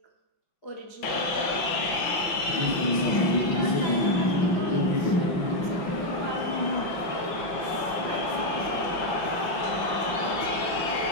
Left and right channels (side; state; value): right; late; 5.8 ms